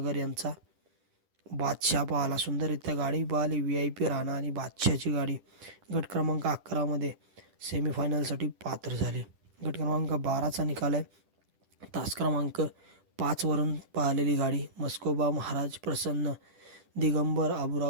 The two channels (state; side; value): late; left; 10 ms